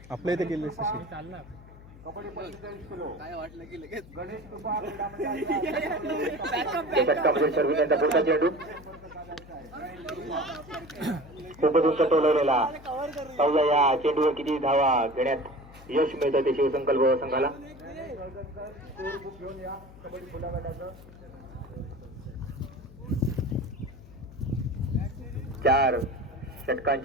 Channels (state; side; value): noise; left; hum, 19 dB below the sound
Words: आपल्या इथे केले तशी. चालणार काय वाटलं की लगेच या षटकामध्ये शर्विन यांचा पुढचा चेंडू खूपच उंच टोलवलेला. पाहूया या चेंडूवर किती धावा घेण्यात यश मिळतं ते शिवसंकल्प संघाला. 4